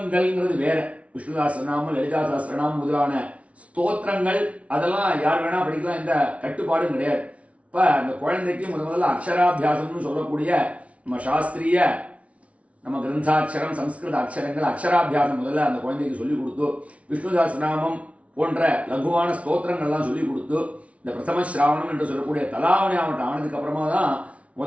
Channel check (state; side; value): late; left; 0.064 ms